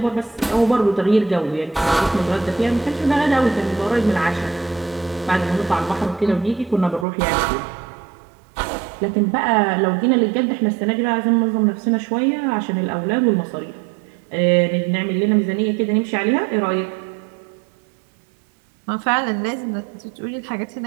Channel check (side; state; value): left; drops out; at 7.1 s